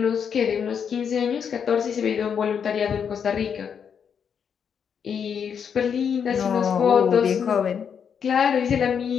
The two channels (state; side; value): quieter; right; 7.3 dB